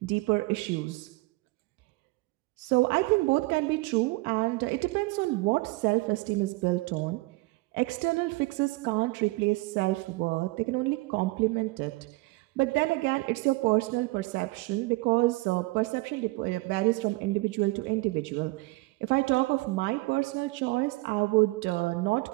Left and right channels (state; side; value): quieter; left; 22.6 dB